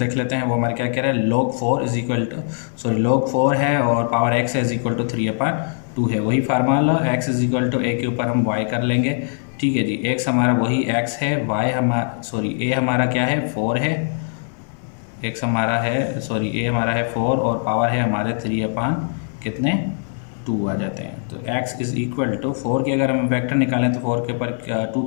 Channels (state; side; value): silent; right; digital silence